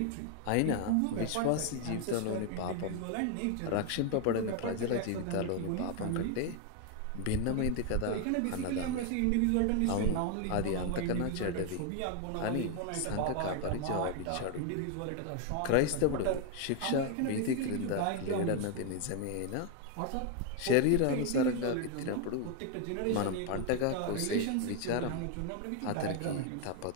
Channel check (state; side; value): different; both; correlation 0.01